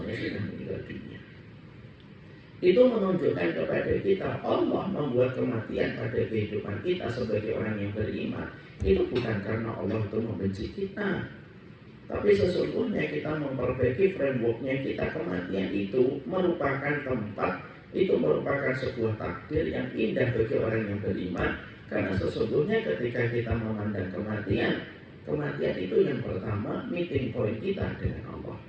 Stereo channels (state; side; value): identical; both; correlation 1.00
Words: sudah meninggal dunia. Itu menunjukkan kepada kita, Allah membuat kematian pada kehidupan kita sebagai orang yang beriman. Itu bukan karena Allah itu membenci kita, tapi sesungguhnya kita memperbaiki frameworknya kita. Kematian itu merupakan tempat, itu merupakan sebuah takdir yang indah bagi orang yang beriman. Karena sesungguhnya ketika kita memandang kematian, kematian itu yang pertama meeting point kita dengan Allah.